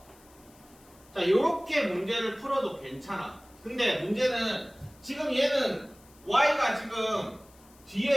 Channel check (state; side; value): noise; left; hiss, 27 dB below the sound